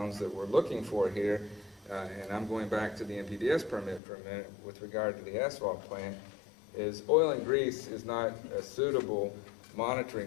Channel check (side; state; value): right; drops out; at 4.0 s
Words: that we're looking for here, and I'm going back to the NPDES permit for a minute with regard to the asphalt plant, is oil and grease is not a suitable